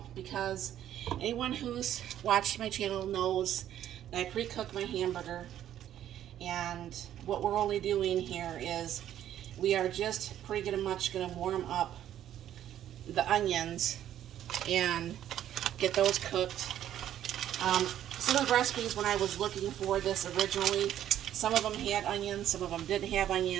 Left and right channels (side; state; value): left; quieter; 11.3 dB